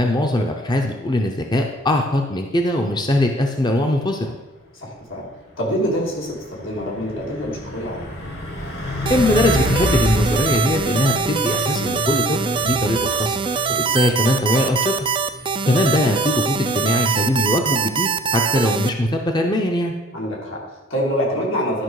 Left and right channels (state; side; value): normal; both; correlation 0.54